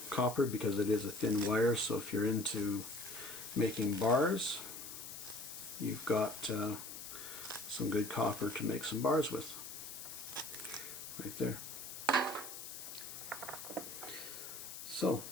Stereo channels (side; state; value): left; noise; hiss, 9 dB below the sound